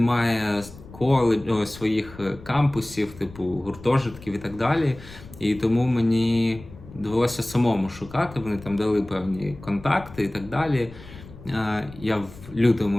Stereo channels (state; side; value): noise; left; rumble, 18 dB below the sound